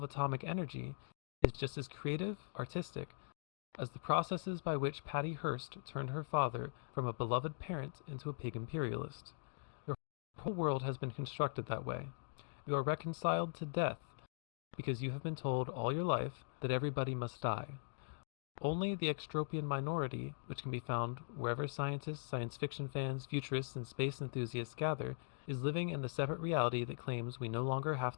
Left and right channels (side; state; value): right; silent; digital silence